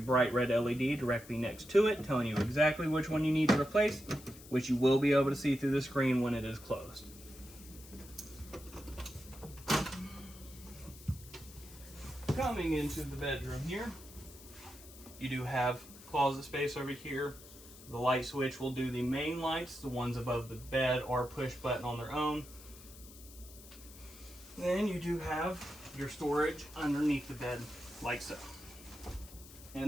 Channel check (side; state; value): left; noise; hiss, 19 dB below the sound